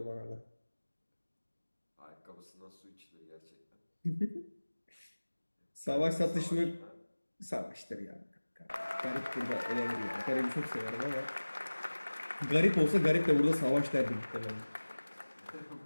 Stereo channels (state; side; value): inverted; both; correlation -1.00